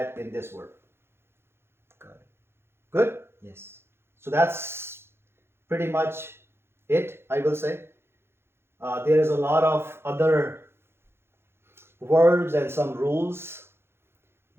in this word. Got it. Good? Yes. So that's pretty much it, I will say. There is a lot of other verbs and some rules,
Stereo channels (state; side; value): late; left; 0.12 ms